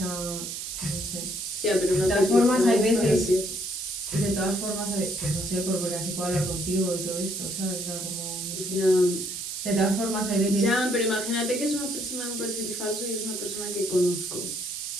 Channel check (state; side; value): noise; right; hiss, 6 dB below the sound